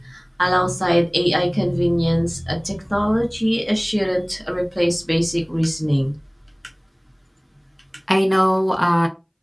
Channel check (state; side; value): identical; both; correlation 1.00